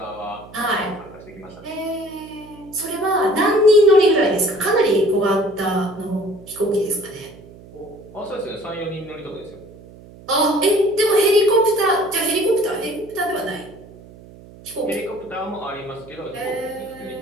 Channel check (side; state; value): right; noise; hum, 20 dB below the sound